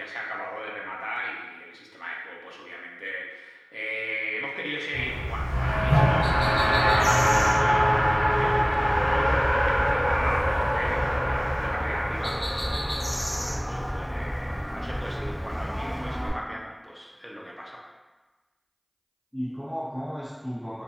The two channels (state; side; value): identical; both; correlation 1.00